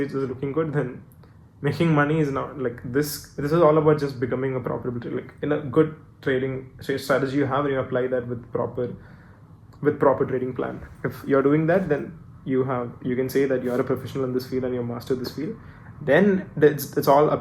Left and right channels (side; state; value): both; identical; correlation 1.00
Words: is looking good, then making money is not like this. This is all about just becoming a profitable trader. Like in a good trading strategy you have, and you apply that with proper trading plan. If you're doing that, then you can say that you're a professional in this field and you master this field. Then it's all